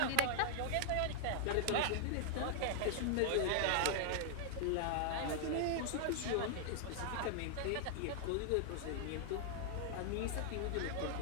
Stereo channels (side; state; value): both; different; correlation -0.01